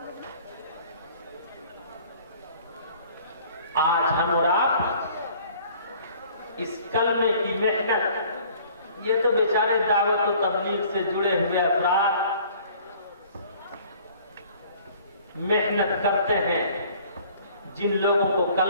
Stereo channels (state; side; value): inverted; both; correlation -0.53